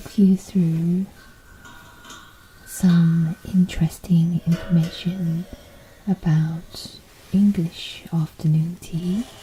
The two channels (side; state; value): both; identical; correlation 1.00